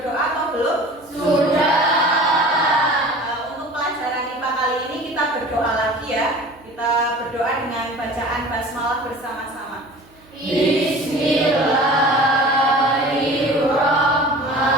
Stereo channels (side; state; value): right; noise; hum, 28 dB below the sound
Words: atau belum? Sudah. Untuk pelajaran IPA kali ini kita berdoa lagi ya. Kita berdoa dengan bacaan basmalah bersama-sama. Bismillahirrahmanirrahim.